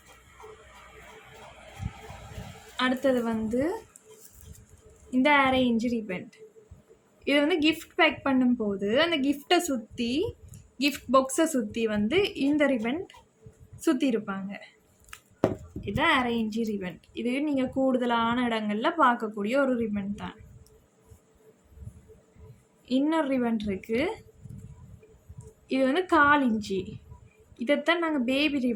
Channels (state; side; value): identical; both; correlation 1.00